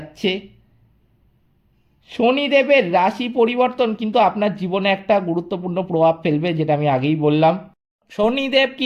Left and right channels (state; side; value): identical; both; correlation 1.00